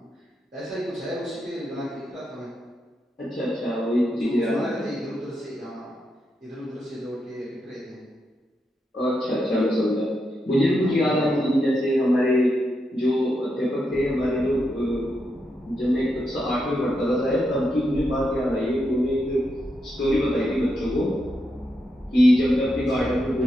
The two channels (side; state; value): both; normal; correlation 0.83